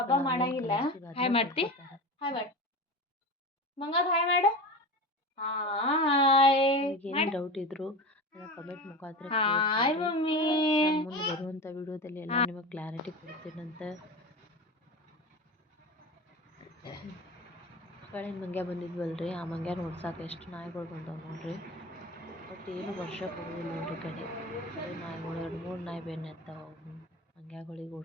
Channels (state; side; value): normal; both; correlation 0.28